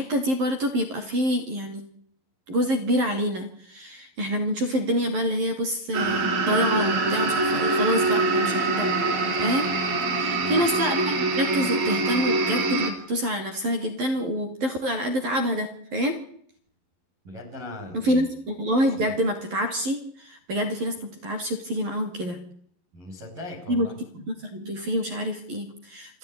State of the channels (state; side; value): late; left; 11 ms